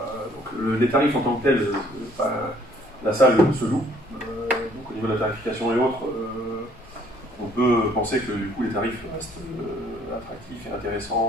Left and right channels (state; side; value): normal; both; correlation 0.61